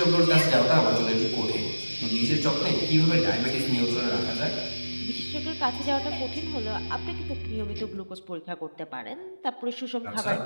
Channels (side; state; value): both; inverted; correlation -1.00